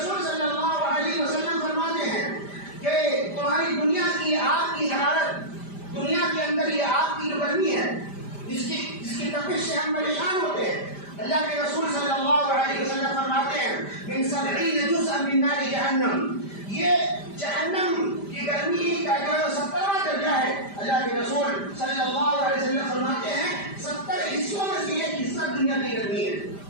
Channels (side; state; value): right; late; 5.0 ms